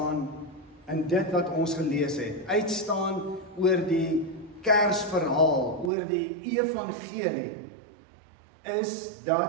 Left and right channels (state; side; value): drops out; left; at 5.9 s